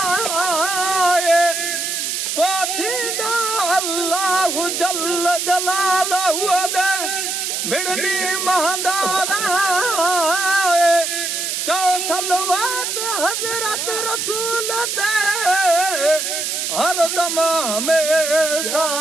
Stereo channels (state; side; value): noise; right; hiss, 2 dB below the sound